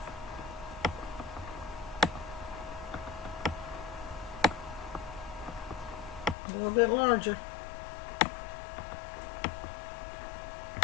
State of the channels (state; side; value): drops out; right; at 6.4 s